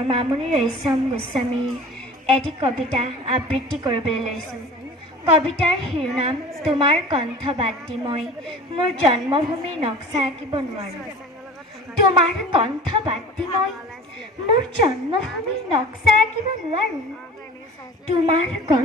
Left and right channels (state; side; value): normal; both; correlation 0.41